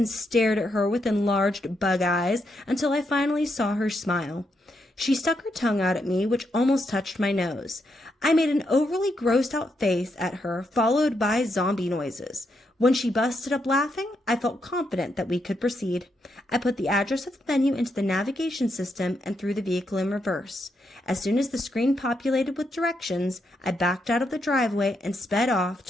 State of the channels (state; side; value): normal; both; correlation 0.80